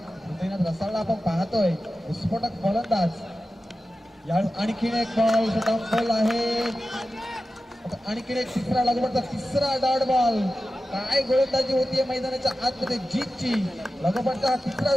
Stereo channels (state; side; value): normal; both; correlation 0.93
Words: हृदयनाथ रसाळला आपण पाहतोय. विस्फोटक गोलंदाज. यावेळेस आणखीन एक बॉल शटडाऊन बॉल आहे. आणखीन एक तिसरा लागवडचा तिसरा डॉट बॉल. काय गोलंदाजी होतीये मैदानाच्या आतमध्ये जीतची. लगोपाठचा हा तिसरा